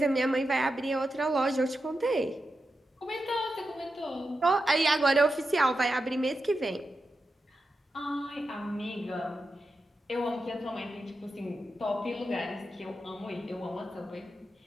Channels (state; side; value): normal; both; correlation 0.89